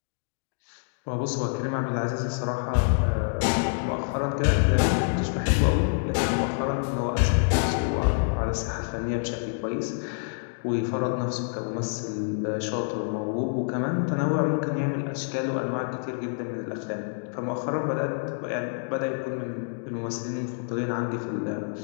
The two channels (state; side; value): silent; right; digital silence